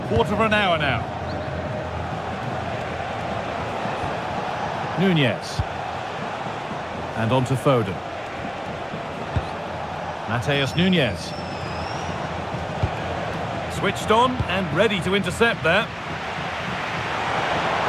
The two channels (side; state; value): both; identical; correlation 1.00